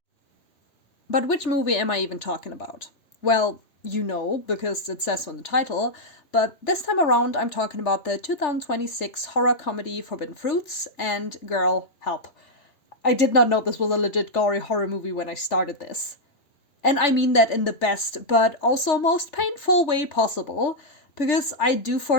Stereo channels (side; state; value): right; late; 3.4 ms